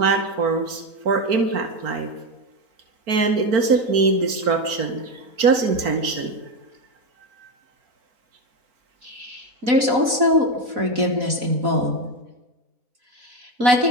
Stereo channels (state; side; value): late; left; 4.5 ms